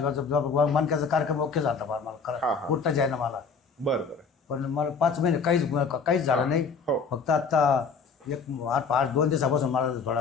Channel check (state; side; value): quieter; right; 5.2 dB